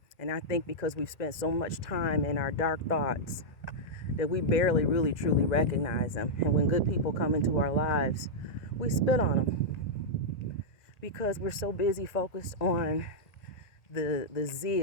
And I think because we've spent so much time in our dark thoughts that we barely really truly recognize them. And when good people come into our lives, we spit on them because we're so busy focused on the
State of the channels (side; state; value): right; late; 1.8 ms